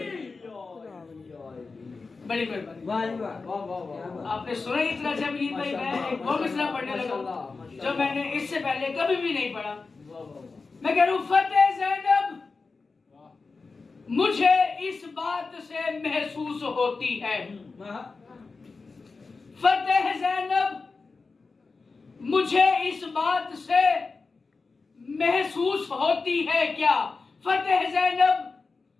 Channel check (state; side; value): quieter; right; 4.2 dB